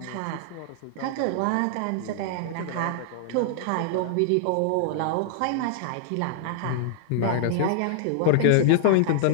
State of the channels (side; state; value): both; different; correlation -0.01